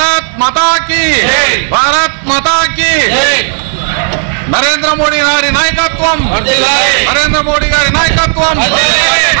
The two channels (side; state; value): left; silent; digital silence